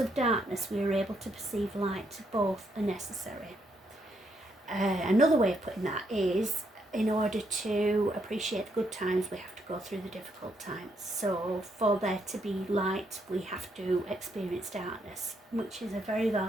darkness, we are able to perceive light. Both are necessary. Another way of putting that is, in order to appreciate the good times, we have to go through the difficult times. So for there to be light, we have to experience darkness, which is a very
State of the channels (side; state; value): both; normal; correlation 0.75